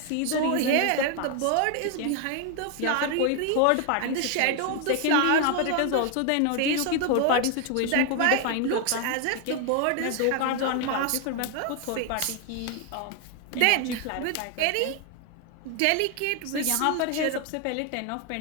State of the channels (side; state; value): both; different; correlation 0.00